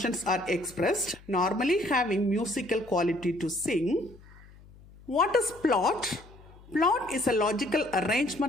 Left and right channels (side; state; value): left; noise; hum, 23 dB below the sound